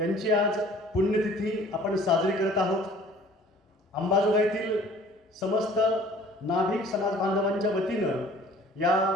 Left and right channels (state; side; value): normal; both; correlation 0.51